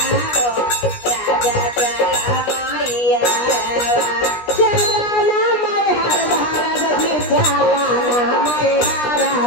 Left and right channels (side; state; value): right; late; 17 ms